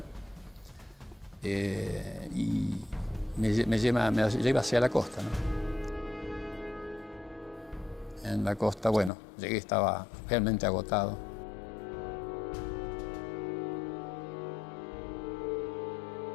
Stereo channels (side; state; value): right; drops out; at 9.1 s